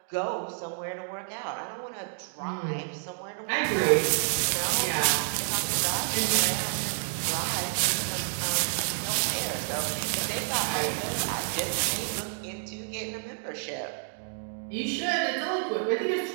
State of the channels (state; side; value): silent; left; 58 dB below the other